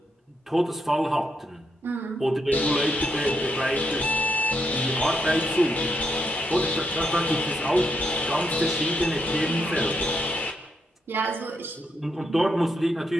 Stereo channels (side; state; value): both; normal; correlation 0.79